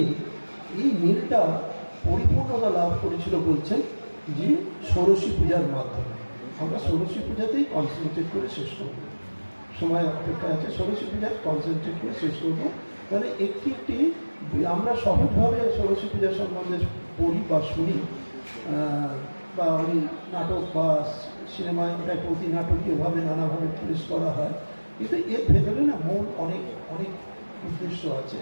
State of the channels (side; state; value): both; inverted; correlation -1.00